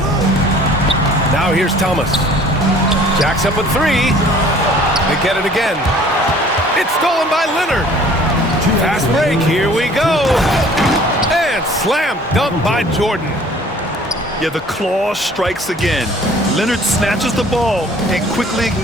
Now here's Thomas. Jacks up a three. They get it again. It's stolen by Leonard. Fast break. Here we go. And slam dunk by Jordan. Yeah, the claw strikes again. Leonard snatches the ball and quickly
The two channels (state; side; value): normal; both; correlation 0.52